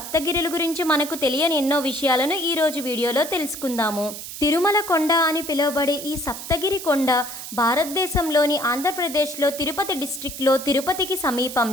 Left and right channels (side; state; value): right; noise; hiss, 10 dB below the sound